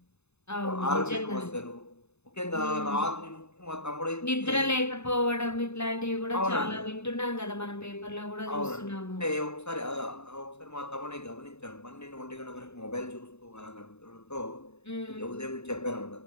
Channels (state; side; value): late; right; 0.81 ms